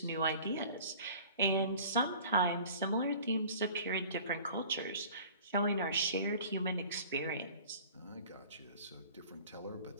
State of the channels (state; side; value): inverted; both; correlation -0.46